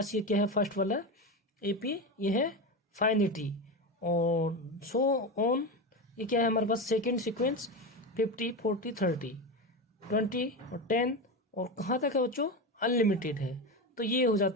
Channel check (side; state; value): both; normal; correlation 0.19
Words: ये क्या है, फर्स्ट वाला एपी ये है फाइनिटी, और सो ऑन ये क्या है हमारे पास, सेकेंड सीक्वेंस 50 40 30 20 और 10, और कहाँ तक है बच्चों, अनलिमिटेड है। तो ये हो